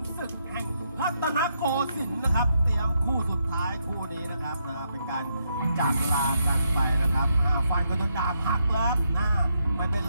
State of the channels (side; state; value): both; inverted; correlation -0.79